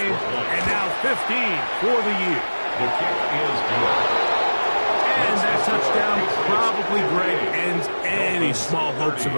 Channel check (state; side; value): inverted; both; correlation -1.00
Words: and now 15 for the year. The kick is good. And that touchdown probably, Greg, ends any small hopes of